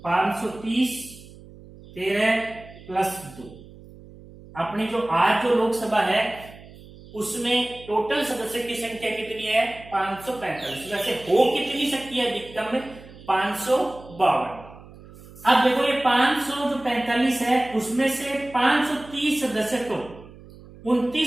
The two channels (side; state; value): right; noise; hum, 20 dB below the sound